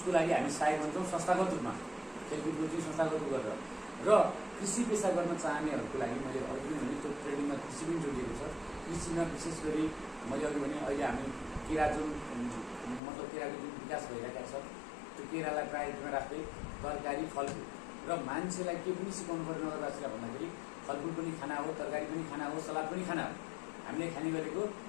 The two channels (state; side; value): drops out; right; at 13.0 s